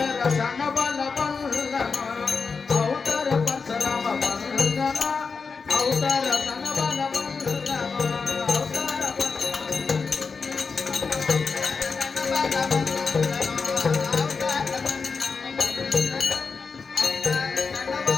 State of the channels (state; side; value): quieter; right; 5.0 dB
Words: ಸಣ್ಣ ಬಲ ಬಂದನೋ ಅವತಾರ ಪರಶುರಾಮ ಬಂದನೋ ಅವತಾರ ಸಣ್ಣ ಬಲ ಬಂದನೋ ಅವತಾರ